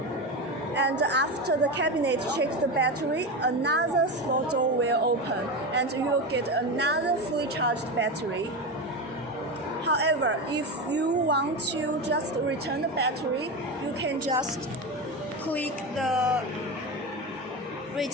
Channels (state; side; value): normal; both; correlation 0.19